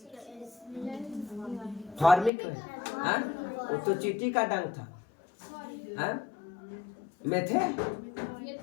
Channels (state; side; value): drops out; right; at 2.3 s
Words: फॉर्मिक, वो तो चींटी का डंक था,